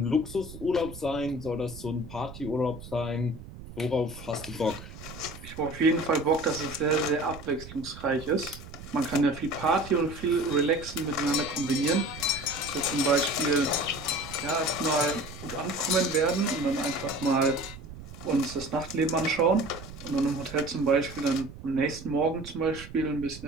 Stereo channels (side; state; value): right; noise; rumble, 14 dB below the sound